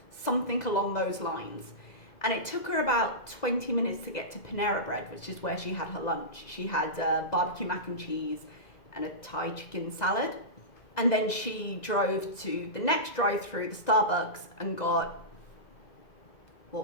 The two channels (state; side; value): late; right; 2.0 ms